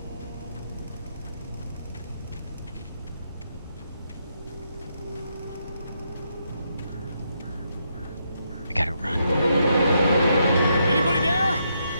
I gotta run. Anybody there?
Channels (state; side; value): inverted; both; correlation -0.79